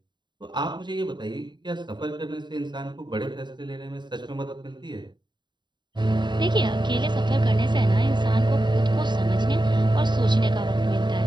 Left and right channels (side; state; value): left; late; 0.22 ms